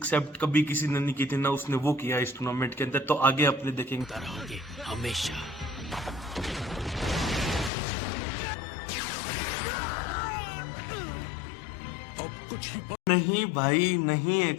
कभी किसी ने नहीं की थी ना, उसने वो किया इस टूर्नामेंट के अंदर। तो आगे अपने देखेंगे रहोगे हमेशा। अब कुछ ही नहीं भाई, नहीं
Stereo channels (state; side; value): drops out; right; at 7.7 s